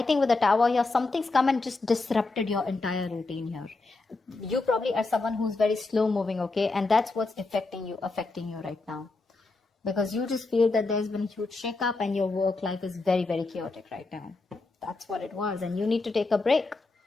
think with the Tower here, something's come and just disrupted your entire routine here. You probably are someone who's very slow moving, okay? And that's what's affecting you right now. Because you just feel that there's been a huge shake-up and your work life is very, very chaotic right now. That's what it was. And you need to take a break.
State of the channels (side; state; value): right; quieter; 3.5 dB